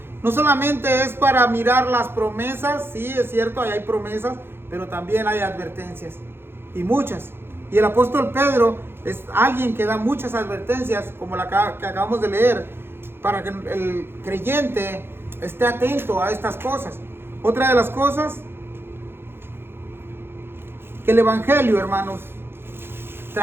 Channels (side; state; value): left; late; 0.11 ms